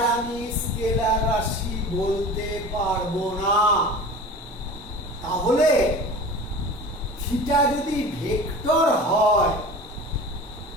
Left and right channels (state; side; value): normal; both; correlation 0.37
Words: আমি স্কেলার রাশি বলতে পারবো না। তাহলে থিটা যদি ভেক্টর হয়,